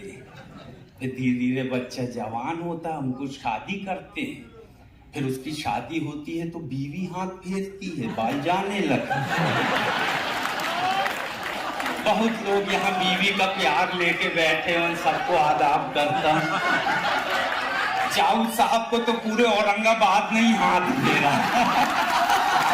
हैं। फिर धीरे धीरे बच्चा जवान होता है, हमको शादी करते हैं, फिर उसकी शादी होती है तो बीवी हाथ फेरती है, बाल जाने लगते। बहुत लोग यहाँ बीवी का प्यार लेके बैठे हैं, उन सबको आदाब करता हूं। चाऊ साहब को तो पूरे औरंगाबाद नहीं हाथ दे रहा।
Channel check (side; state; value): both; identical; correlation 1.00